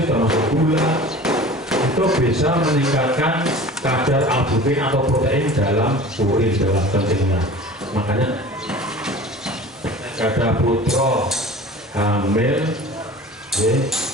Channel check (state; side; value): normal; both; correlation 0.40